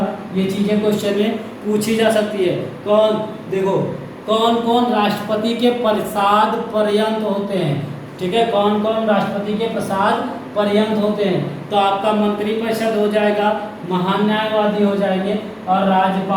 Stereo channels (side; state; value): both; identical; correlation 1.00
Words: ये चीजें क्वेश्चन में पूछी जा सकती है। देखो कौन कौन राष्ट्रपति के प्रसाद पर्यंत होते हैं। ठीक है, कौन कौन राष्ट्रपति के प्रसाद पर्यंत होते हैं, तो आपका मंत्री परिषद हो जाएगा, महान न्यायवादी हो जाएंगे और